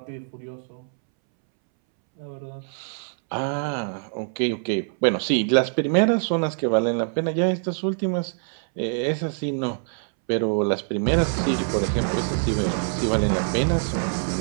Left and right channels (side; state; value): left; silent; 62 dB below the other